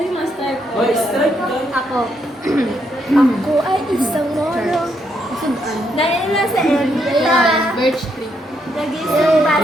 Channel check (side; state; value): both; normal; correlation 0.76